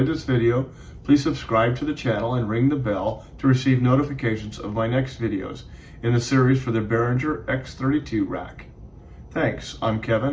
this video, please subscribe to the channel and ring the bell to receive notifications of my next videos in the series for the Behringer X32 Rack. Thanks, I'm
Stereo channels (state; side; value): identical; both; correlation 1.00